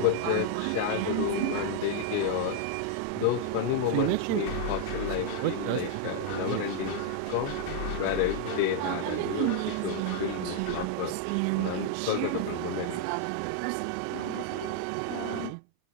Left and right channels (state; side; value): different; both; correlation 0.00